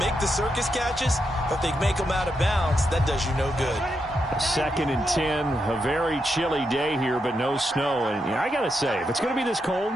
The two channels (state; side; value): normal; both; correlation 0.83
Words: the circus catches, but if they make them out of bounds, that does you no good. 2nd and 10, a very chilly day here, but no snow. And I got to say, if it's going to be this cold,